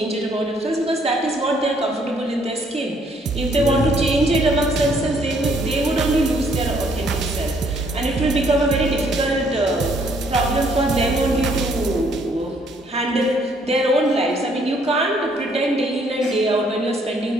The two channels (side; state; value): both; normal; correlation 0.66